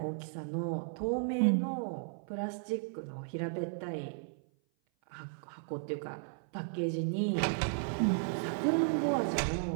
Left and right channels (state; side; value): silent; left; 55 dB below the other